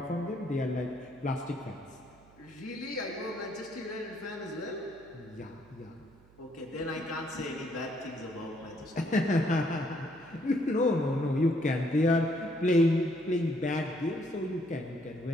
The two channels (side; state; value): right; noise; hum, 26 dB below the sound